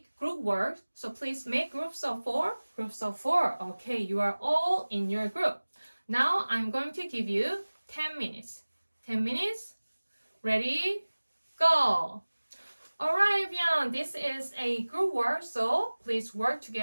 group work. So please make groups of four. Groups of four. Okay, you are all in your group. Now I'm going to give you 10 minutes. 10 minutes. Ready? Go. All right, everyone. This is a group work. So please work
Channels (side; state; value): both; inverted; correlation -1.00